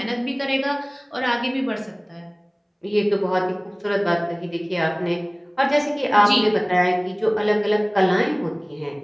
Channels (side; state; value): both; identical; correlation 1.00